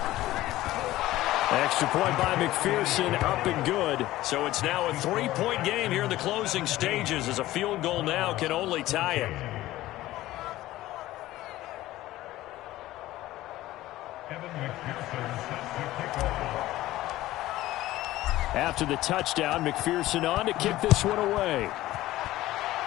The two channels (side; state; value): right; quieter; 16.0 dB